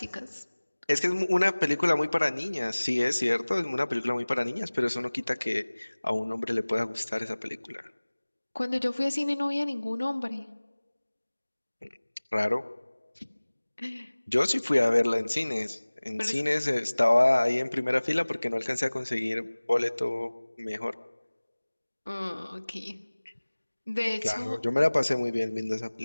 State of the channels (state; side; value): inverted; both; correlation -1.00